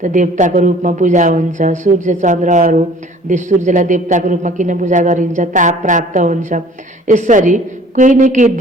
त देवताको रूपमा पूजा हुन्छ। सूर्य चन्द्रहरू, सूर्यलाई देवताको रूपमा किन पूजा गरिन्छ? ताप प्राप्त हुन्छ। यसरी कोही न केही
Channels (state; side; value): normal; both; correlation 0.51